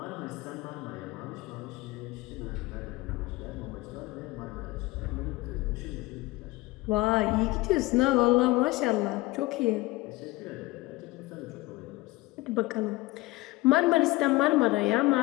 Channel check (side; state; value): right; quieter; 20.3 dB